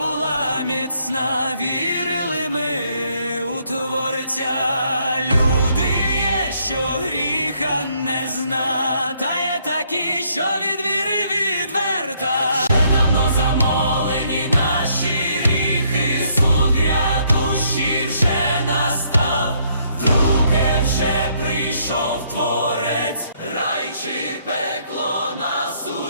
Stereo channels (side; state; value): both; inverted; correlation -0.69